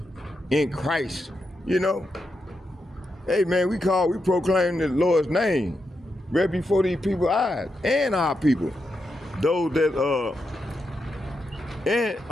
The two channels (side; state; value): both; normal; correlation 0.85